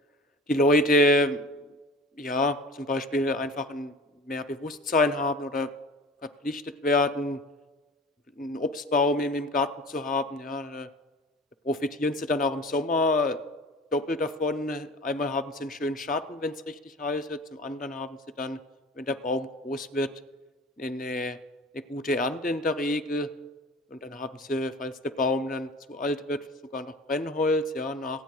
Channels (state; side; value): normal; both; correlation 0.40